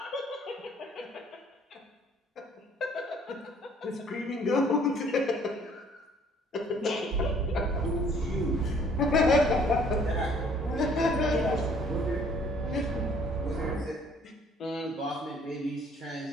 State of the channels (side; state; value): both; normal; correlation 0.59